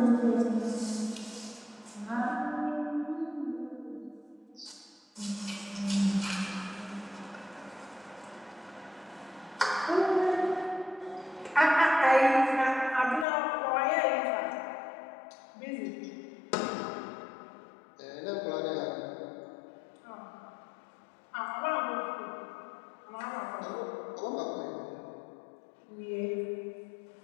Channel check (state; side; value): drops out; right; at 13.2 s